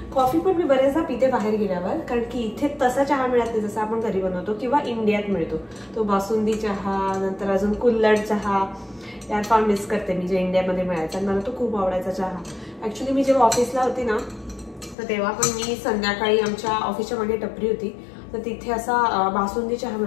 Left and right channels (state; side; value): drops out; right; at 15.0 s